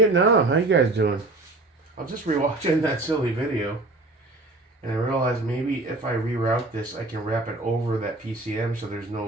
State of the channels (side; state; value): left; quieter; 3.0 dB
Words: How you guys doing? I'm just rewatching that silly video, and I realized maybe if I reroute this, I can wrap it over that PCM so there's